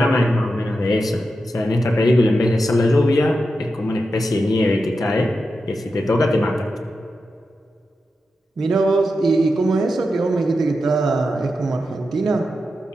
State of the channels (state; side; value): normal; both; correlation 0.89